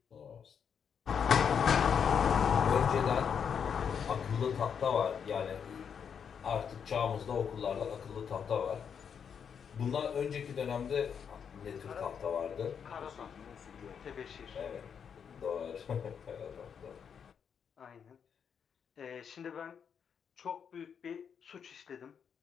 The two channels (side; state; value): right; quieter; 7.3 dB